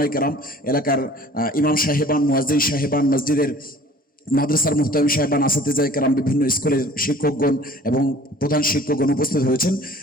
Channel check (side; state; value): both; normal; correlation 0.49